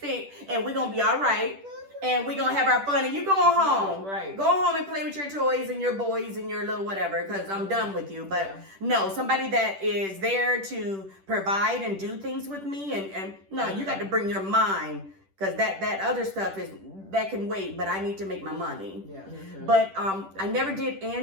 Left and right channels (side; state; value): left; late; 10 ms